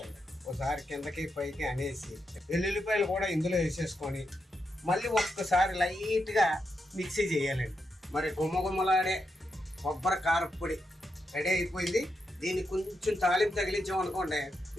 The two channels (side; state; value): both; normal; correlation 0.84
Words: ఒకసారి కిందకి పైకి అనేసి వెల్లుల్లిపాయలు కూడా ఇందులో వేసేసుకొని మళ్ళీ ఒక్కసారి లైట్గా మిక్సీ చేయాలండి. మరి గుమ్మగుమ్మలాడే కొబ్బరి కారపొడి రెడీ అయిపోయింది. దీన్ని కొంచెం తాలింపు తగిలించామనుకోండి